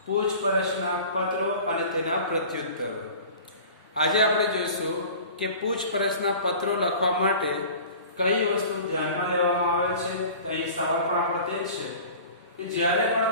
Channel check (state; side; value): inverted; both; correlation -0.41